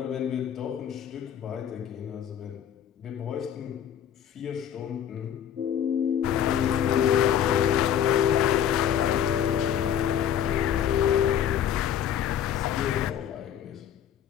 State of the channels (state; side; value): quieter; right; 9.6 dB